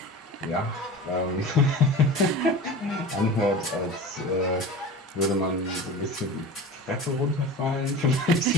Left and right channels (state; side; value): normal; both; correlation 0.33